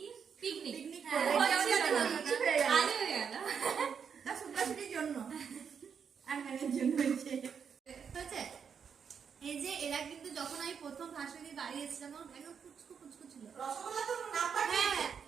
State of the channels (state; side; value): quieter; left; 6.9 dB